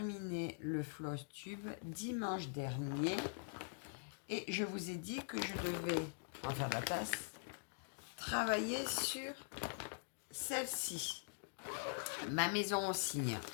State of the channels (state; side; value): silent; right; digital silence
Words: le floss tube dimanche dernier et je vous ai dit que je devais, en faire la tasse, travailler sur celle-ci, ma maison au cygne.